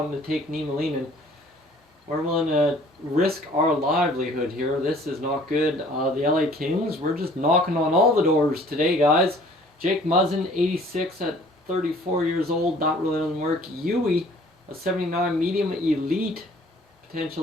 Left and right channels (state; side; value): normal; both; correlation 0.54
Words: to take Niemelainen? We're willing to risk our livelihood here. This is not good. The LA Kings, we're just knocking on all the doors today, guys. Jake Muzzin, 86 at 34 years old. That really doesn't work. Yui, a 79 medium elite